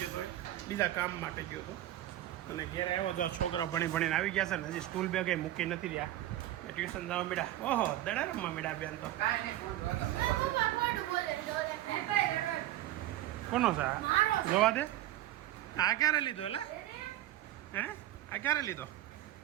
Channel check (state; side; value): quieter; left; 14.2 dB